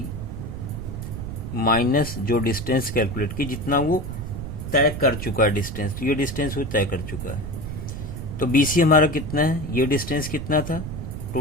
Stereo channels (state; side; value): noise; right; rumble, 7 dB below the sound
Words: माइनस जो डिस्टेंस कैलकुलेट की, जितना वो तय कर चुका है डिस्टेंस, तो ये डिस्टेंस वो तय कर चुका है। तो BC हमारा कितना है, ये डिस्टेंस कितना था,